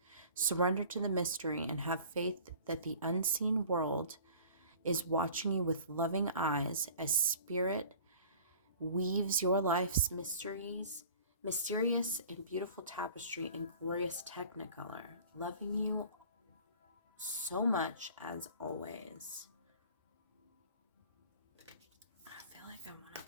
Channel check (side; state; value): both; inverted; correlation -0.45